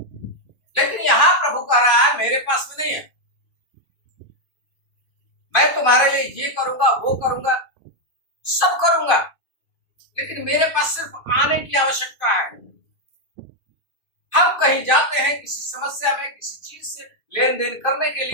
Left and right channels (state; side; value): late; right; 2.5 ms